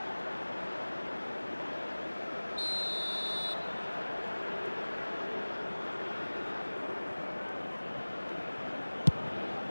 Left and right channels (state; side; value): inverted; both; correlation -1.00